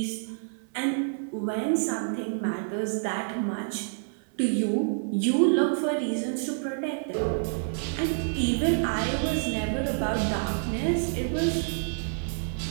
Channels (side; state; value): left; silent; 59 dB below the other